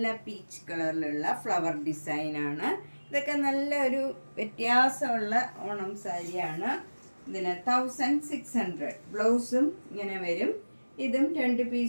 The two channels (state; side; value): inverted; both; correlation -1.00